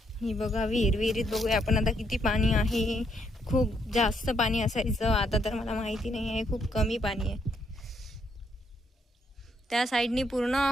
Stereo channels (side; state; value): both; normal; correlation 0.74